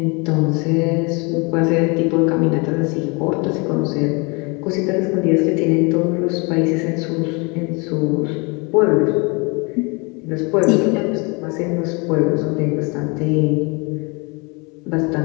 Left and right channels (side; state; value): right; quieter; 29.8 dB